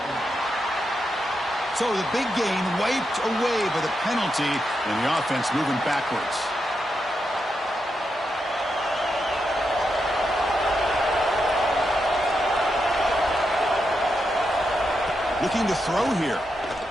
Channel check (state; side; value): normal; both; correlation 0.85